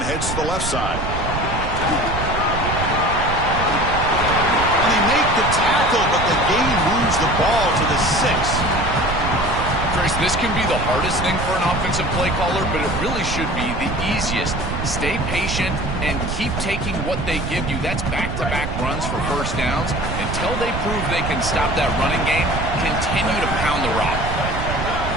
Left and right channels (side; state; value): right; noise; rumble, 4 dB below the sound